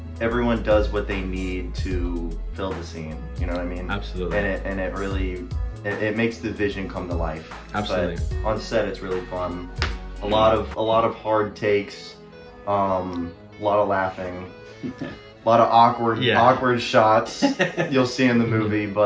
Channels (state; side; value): identical; both; correlation 1.00